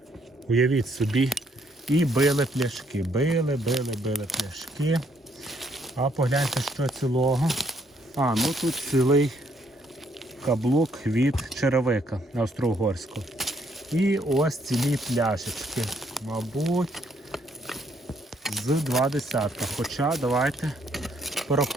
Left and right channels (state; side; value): normal; both; correlation 0.70